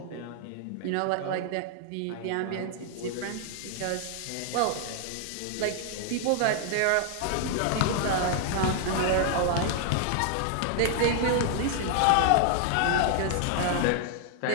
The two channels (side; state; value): both; different; correlation 0.00